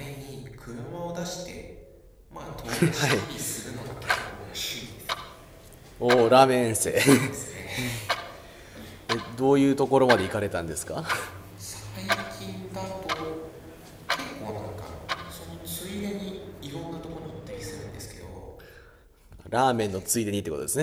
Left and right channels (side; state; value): both; identical; correlation 1.00